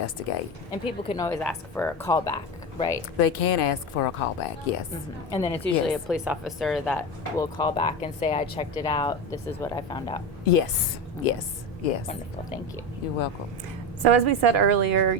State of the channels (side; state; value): both; normal; correlation 0.20